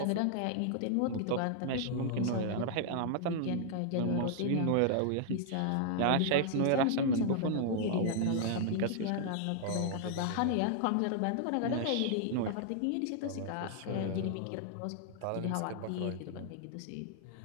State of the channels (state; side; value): different; both; correlation -0.01